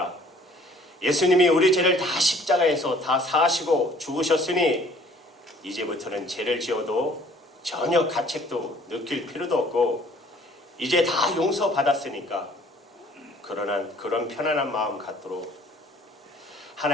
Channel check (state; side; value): normal; both; correlation 0.56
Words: 예수님이 우리 죄를 다 십자가에서 다 사하시고 죽으셨으니 이제부터는 죄를 지어도 전혀 가책도 느낄 필요도 없고 이제 다 용서받았으니까 그런 편안한 마음 갖도록